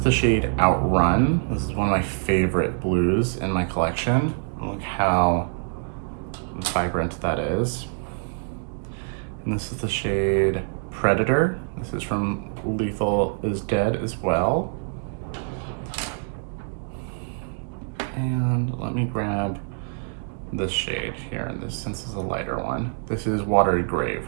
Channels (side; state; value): left; silent; 62 dB below the other